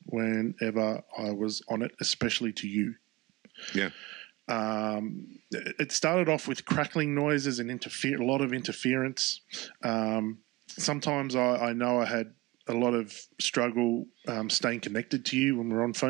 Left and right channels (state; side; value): quieter; left; 20.4 dB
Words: whenever I was on it, especially to you. Yeah. It started off with crackling noises and a lot of interference. Sometimes I know I had a lot of struggle staying connected to you when we're on